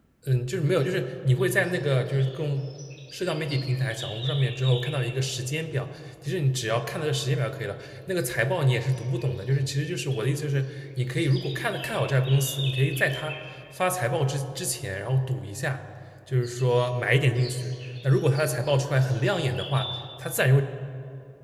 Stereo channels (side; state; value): both; identical; correlation 1.00